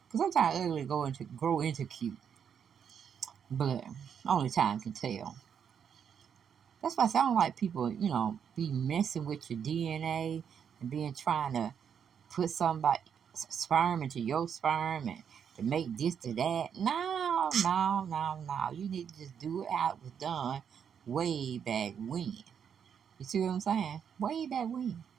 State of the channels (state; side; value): quieter; left; 7.7 dB